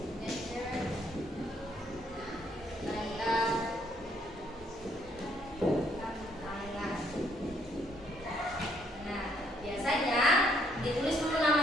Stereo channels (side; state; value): both; normal; correlation 0.69